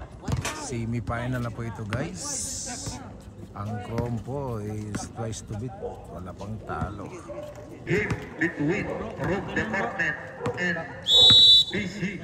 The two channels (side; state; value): both; identical; correlation 1.00